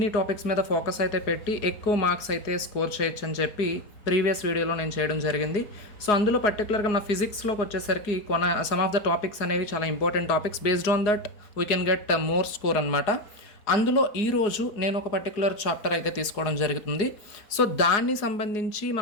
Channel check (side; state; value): right; late; 4.8 ms